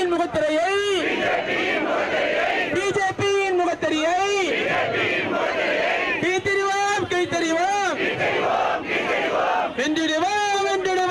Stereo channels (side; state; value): both; identical; correlation 1.00